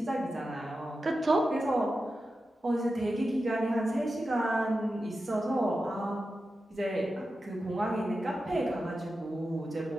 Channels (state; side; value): normal; both; correlation 0.91